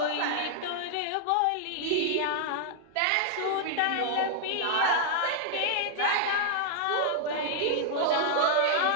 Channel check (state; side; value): different; both; correlation -0.01